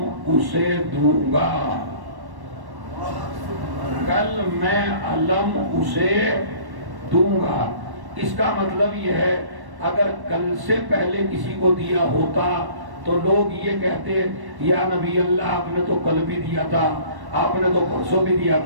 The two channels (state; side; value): late; left; 1.1 ms